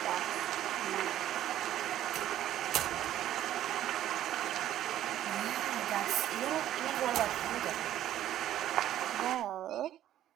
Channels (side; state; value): left; quieter; 12.2 dB